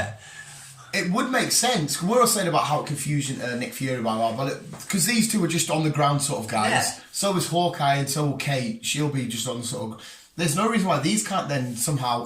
it would make sense. We're all saying about how confusing Nick Fury, because these two are just on the ground sort of guys. Yeah. So is Hawkeye and so will Kate. She'll be just on the sort of. There's no reason why these can't then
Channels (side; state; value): both; identical; correlation 1.00